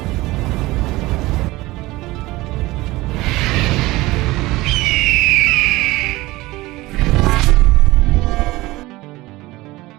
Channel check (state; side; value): quieter; left; 19.6 dB